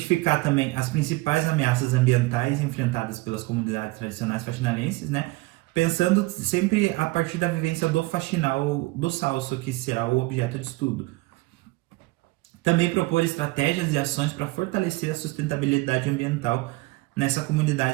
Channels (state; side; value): quieter; left; 22.1 dB